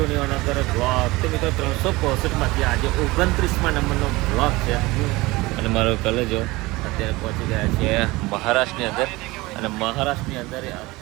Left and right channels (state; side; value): quieter; left; 21.3 dB